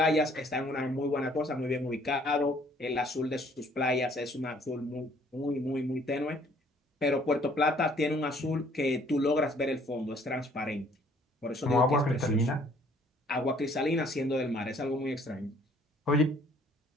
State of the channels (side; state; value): both; normal; correlation 0.60